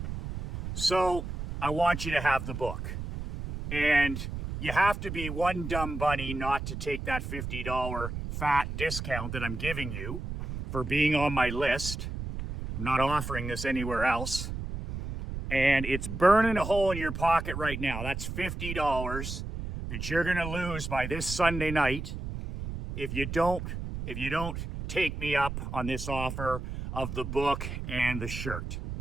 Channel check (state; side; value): noise; right; rumble, 6 dB below the sound